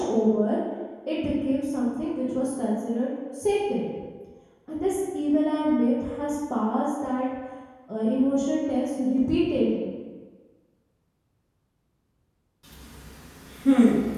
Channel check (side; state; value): both; identical; correlation 1.00